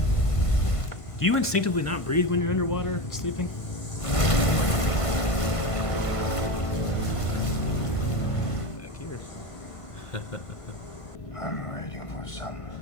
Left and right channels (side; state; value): right; late; 1.5 ms